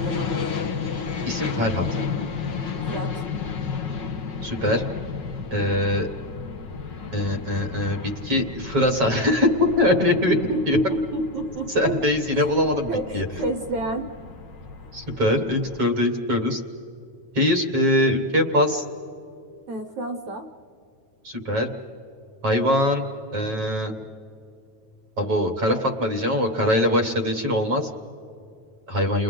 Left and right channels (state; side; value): late; left; 9.2 ms